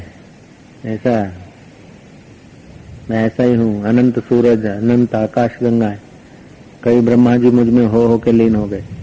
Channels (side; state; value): both; identical; correlation 1.00